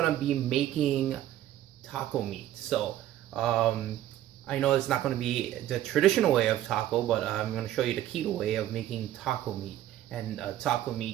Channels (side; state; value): left; quieter; 12.9 dB